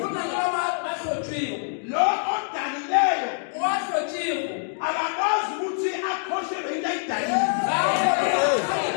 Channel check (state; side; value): silent; right; digital silence